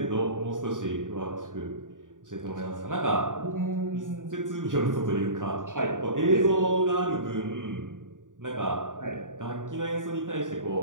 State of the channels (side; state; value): left; late; 0.88 ms